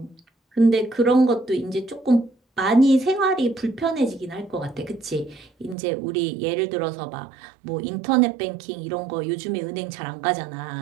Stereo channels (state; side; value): drops out; left; at 5.8 s